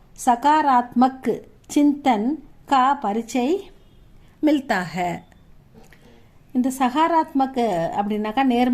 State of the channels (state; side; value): identical; both; correlation 1.00